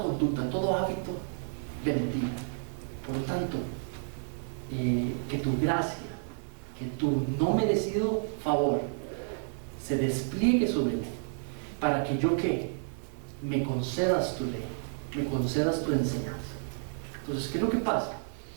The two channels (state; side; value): silent; left; 57 dB below the other